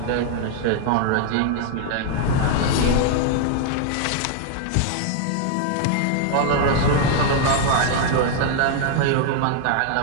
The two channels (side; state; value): both; different; correlation 0.00